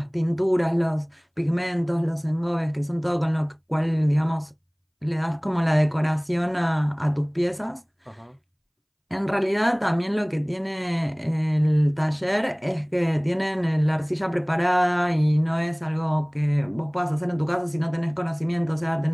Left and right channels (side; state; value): both; identical; correlation 1.00